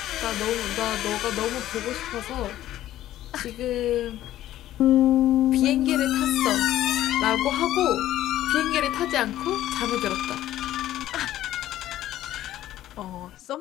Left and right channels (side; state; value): right; quieter; 13.4 dB